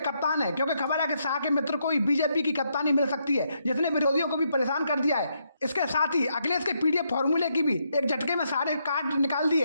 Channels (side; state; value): both; inverted; correlation -0.77